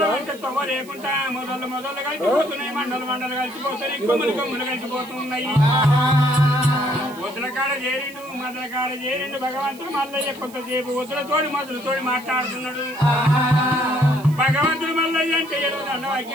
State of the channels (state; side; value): noise; right; hiss, 21 dB below the sound